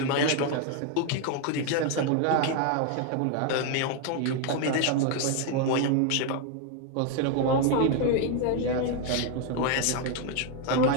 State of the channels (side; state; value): both; different; correlation 0.01